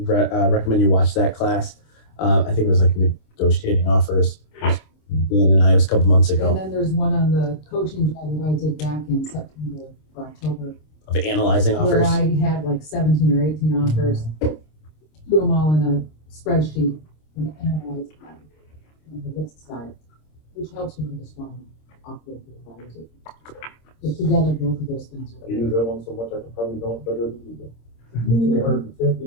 recommend you watch that class. I think it was like negotiating offers. Dan and I, it was a couple months And ago, then there's one on the coaching job that I did back in September or October, of analyzing where offers. I had like 17 or 18 offers, threw them all in a spreadsheet and analyzed them on the list side, which helps you make a strong offer for the buyers. But together, both of those things I are. use that one so much I could probably don't better than you do. 350,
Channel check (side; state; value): right; late; 26 ms